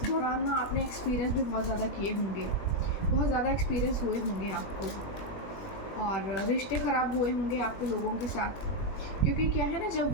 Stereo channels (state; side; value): late; right; 21 ms